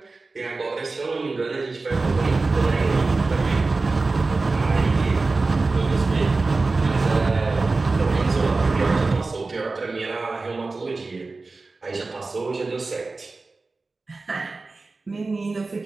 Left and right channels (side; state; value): left; quieter; 3.7 dB